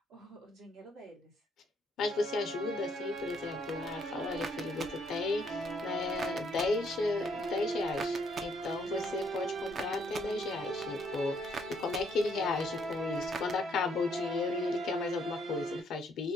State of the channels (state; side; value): normal; both; correlation 0.70